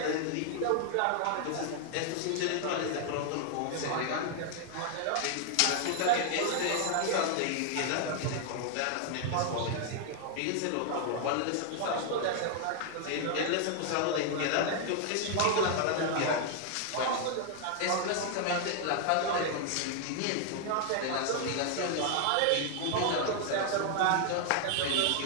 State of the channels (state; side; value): different; both; correlation 0.00